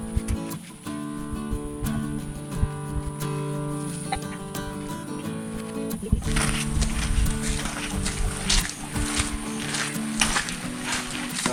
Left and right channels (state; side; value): identical; both; correlation 1.00